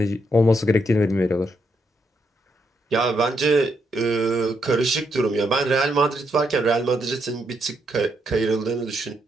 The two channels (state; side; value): normal; both; correlation 0.78